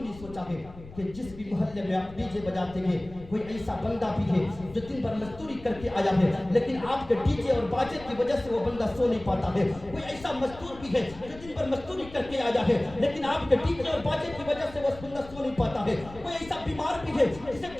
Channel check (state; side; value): noise; left; rumble, 17 dB below the sound